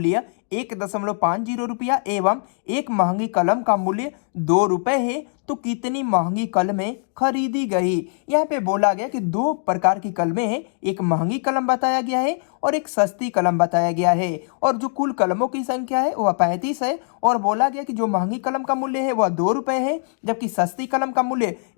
1.50 रुपया एवं एक महंगी कलम का मूल्य 2 रुपए है तो कितनी महंगी कलमें खरीदी गई। यहाँ पे बोला गया कि दो प्रकार की कलमें हैं, एक महंगी कलम बताया गया है और एक सस्ती कलम बताया गया है, और जो कुल कलमों की संख्या है वह 35 है। और बोला गया कि जो महंगी कलम का मूल्य है वह 2 रुपए है, जबकि सस्ती कलम का मूल्य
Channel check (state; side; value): silent; right; digital silence